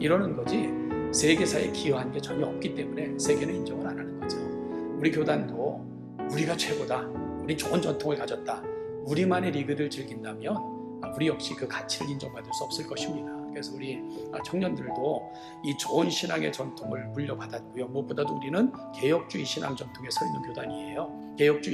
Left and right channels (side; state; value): both; identical; correlation 1.00